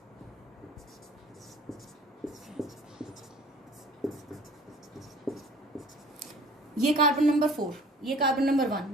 ये कार्बन नंबर 4, ये कार्बन नंबर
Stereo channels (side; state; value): both; normal; correlation 0.49